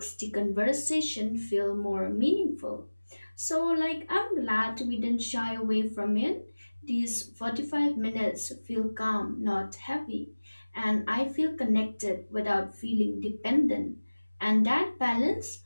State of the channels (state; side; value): inverted; both; correlation -1.00